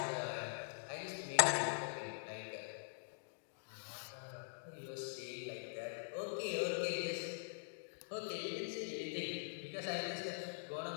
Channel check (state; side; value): silent; right; digital silence